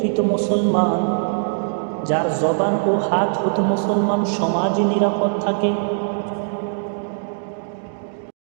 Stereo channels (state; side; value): silent; left; digital silence